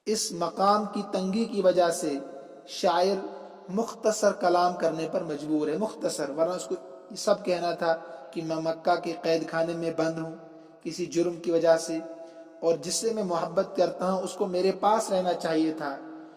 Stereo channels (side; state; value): both; identical; correlation 1.00